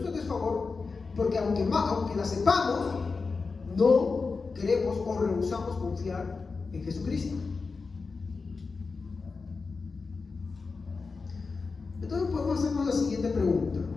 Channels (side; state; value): right; quieter; 4.4 dB